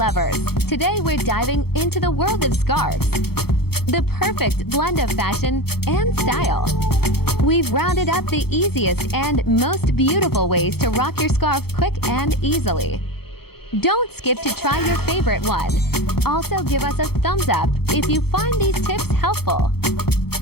today we're diving into the world of scarves. The perfect blend of fashion and style. We've rounded up the easiest and most beautiful ways to rock your scarf quick and easily. Don't skip to try your favorite one. Also give us a thumbs up if you find these tips helpful.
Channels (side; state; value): right; late; 0.96 ms